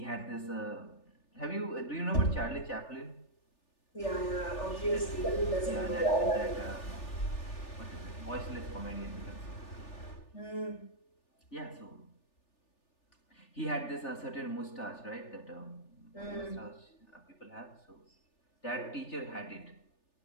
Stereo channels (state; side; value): late; right; 3.4 ms